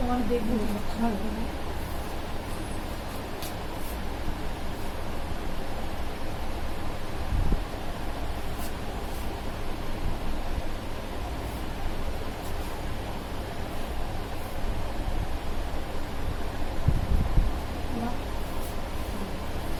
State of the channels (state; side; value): identical; both; correlation 1.00